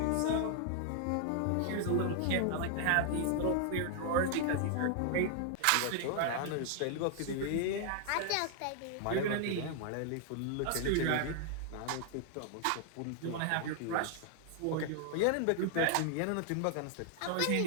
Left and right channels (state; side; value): different; both; correlation 0.00